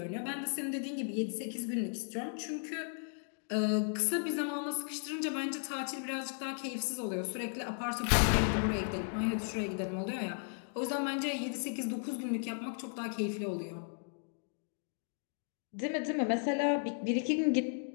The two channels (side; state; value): right; silent; 54 dB below the other